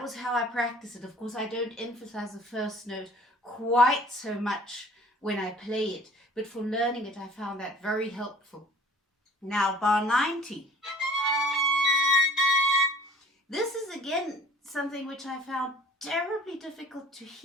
was how I practice it. Of course, I don't emphasize the first note quite so much when I play it, but for learning it, I found that very helpful. Now, bar 90. This is again something which I found terribly difficult to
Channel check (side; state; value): both; normal; correlation 0.49